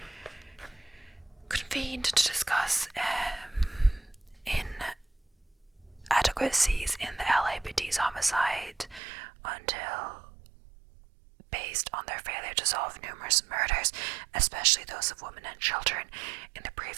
convened to discuss inadequacies in the LAPD's homicide until based on their failure to solve numerous murders, especially those of women and children, in the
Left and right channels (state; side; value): drops out; left; at 9.0 s